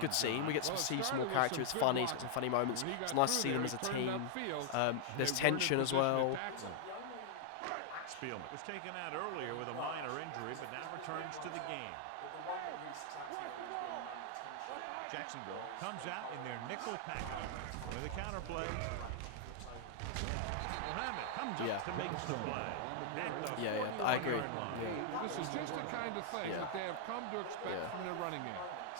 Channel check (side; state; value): both; different; correlation 0.00